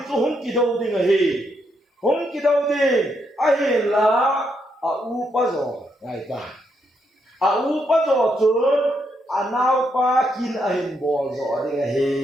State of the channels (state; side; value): normal; both; correlation 0.78